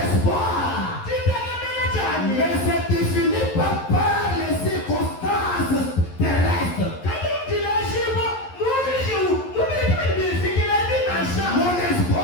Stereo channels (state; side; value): late; right; 11 ms